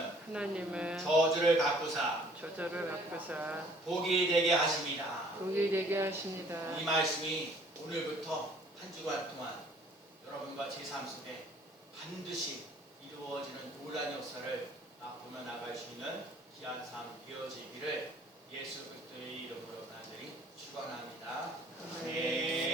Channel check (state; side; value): normal; both; correlation 0.56